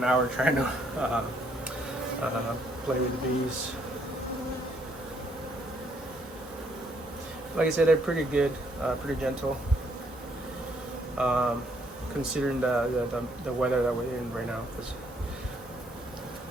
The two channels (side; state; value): both; normal; correlation 0.70